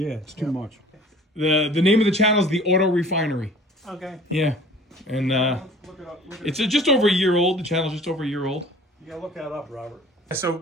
it's too much. The name of the channel is the Auto Refinery. Okay. Yeah, and Look it up. it's just over a year old. The channel's just over a year old. You gotta look that up, Robert.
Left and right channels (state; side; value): normal; both; correlation 0.48